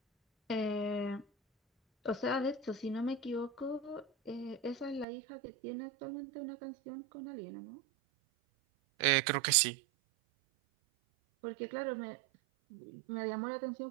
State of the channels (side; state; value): left; drops out; at 5.1 s